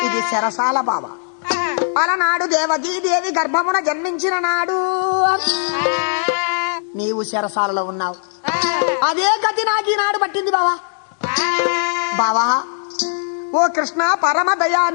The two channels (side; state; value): right; silent; 67 dB below the other